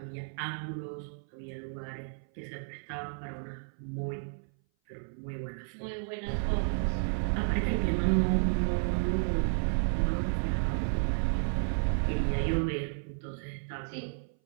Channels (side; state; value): left; silent; 56 dB below the other